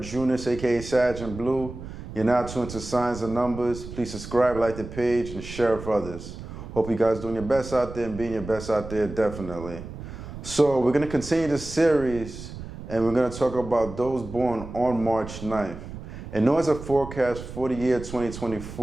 aka Sag and Blue. You're now tuned to Signs and Numbers. Please subscribe, like the page, and share with others. Hope you guys doing your best out there and being your best out there, definitely. So we're going to continue this series, and we're going to talk about those born on March 9th. And known as a forecast for the year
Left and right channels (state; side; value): noise; right; rumble, 11 dB below the sound